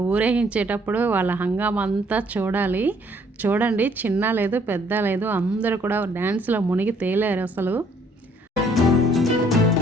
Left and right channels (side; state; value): both; normal; correlation 0.63